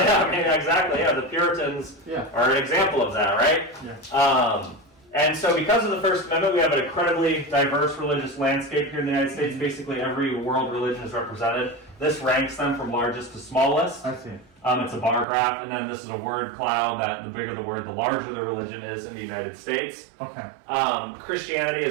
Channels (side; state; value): left; drops out; at 15.2 s